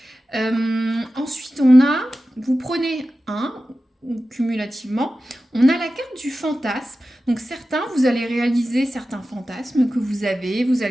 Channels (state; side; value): normal; both; correlation 0.94